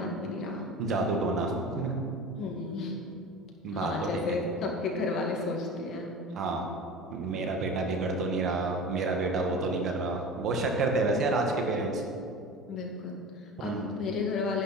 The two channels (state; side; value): normal; both; correlation 0.34